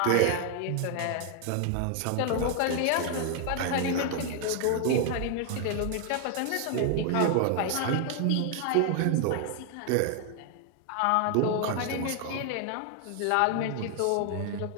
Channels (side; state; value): both; different; correlation 0.00